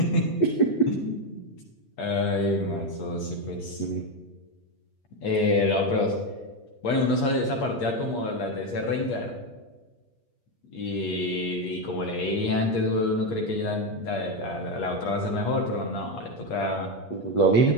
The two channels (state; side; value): late; right; 8.4 ms